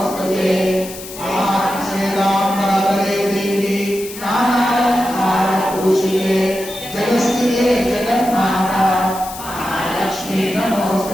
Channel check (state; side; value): noise; left; hiss, 13 dB below the sound